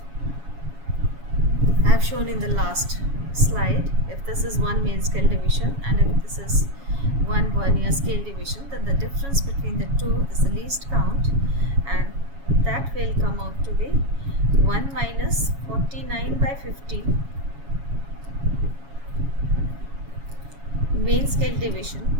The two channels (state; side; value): late; left; 7.2 ms